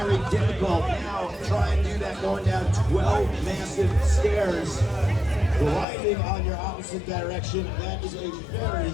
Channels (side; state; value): right; drops out; at 5.9 s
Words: difficult. Now, try and do that going down 12 massive stairs, gliding on your opposite direction. That is a very,